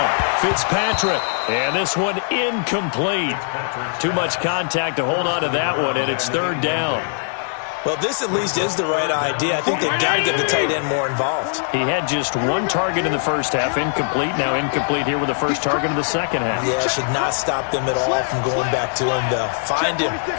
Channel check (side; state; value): right; silent; 65 dB below the other